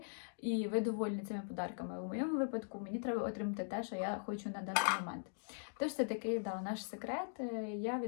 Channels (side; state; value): right; silent; digital silence